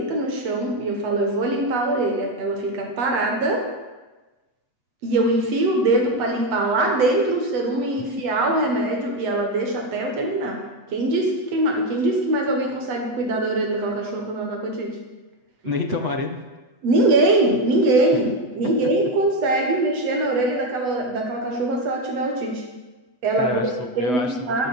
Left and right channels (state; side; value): late; left; 8.1 ms